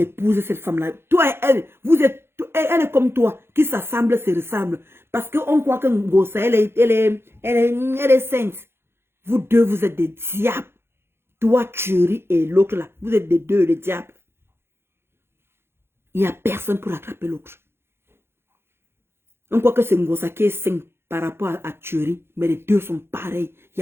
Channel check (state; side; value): late; left; 0.12 ms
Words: cette femme-là. Toi et elle, elle est comme toi, qui s'assemble, se ressemble. Parce qu'on croit que Ngosa, elle est sainte. Vous deux, vous êtes des diables. Toi, Chérie, et l'autre là, vous êtes des deux, les diables. Il n'y a personne pour attraper l'autre. On croit que c'est Ngosa qui est saint par rapport à Chérie, mais les deux sont pareils. Il